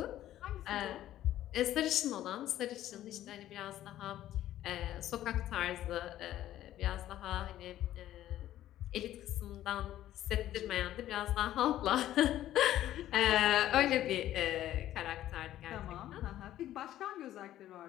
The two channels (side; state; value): right; quieter; 13.1 dB